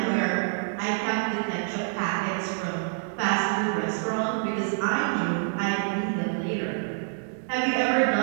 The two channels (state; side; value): silent; left; digital silence